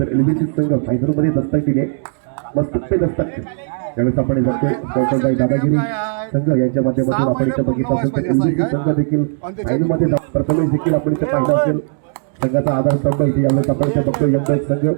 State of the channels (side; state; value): left; silent; digital silence